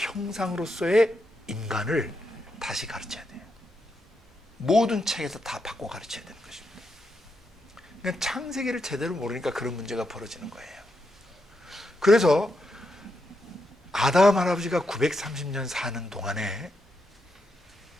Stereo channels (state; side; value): normal; both; correlation 0.82